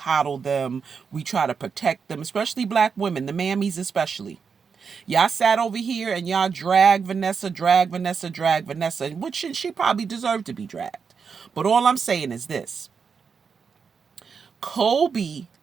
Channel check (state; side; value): quieter; left; 5.9 dB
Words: them. We try to protect them, especially black women, the mammies especially. Y'all sat over here and y'all drag Vanessa, which she probably deserved to be dragged. But all I'm saying is this. Kobe